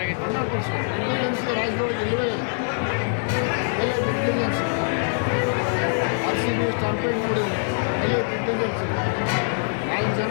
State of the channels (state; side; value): silent; right; 60 dB below the other